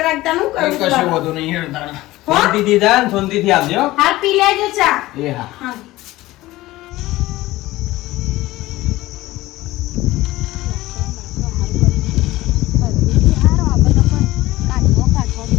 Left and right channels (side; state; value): right; quieter; 17.8 dB